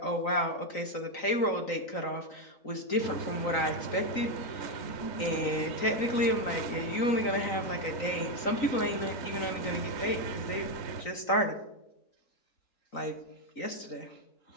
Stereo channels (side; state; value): right; late; 3.9 ms